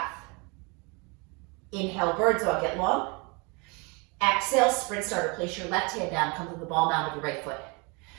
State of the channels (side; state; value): left; quieter; 30.2 dB